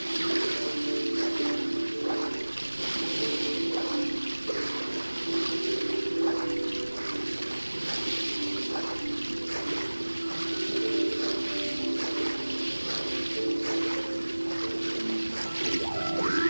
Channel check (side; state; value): both; inverted; correlation -1.00